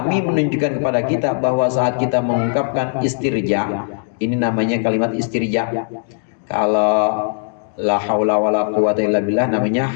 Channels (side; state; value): right; silent; digital silence